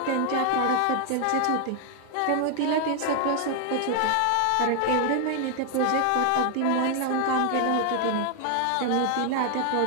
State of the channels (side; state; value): both; different; correlation 0.00